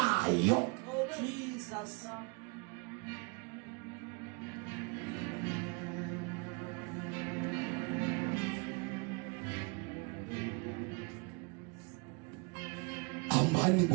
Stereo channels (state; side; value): quieter; left; 31.5 dB